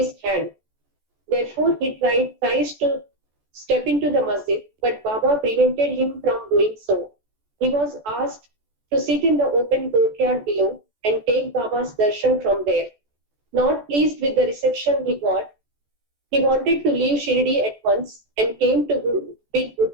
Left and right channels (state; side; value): late; left; 14 ms